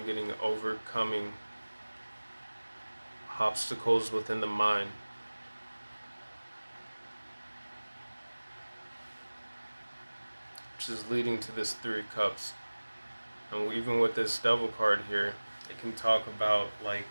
getting overcoming obstacles within the mind. Which is leading to this Three of Cups. And even with this Devil card here, it can talk about like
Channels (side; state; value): both; inverted; correlation -1.00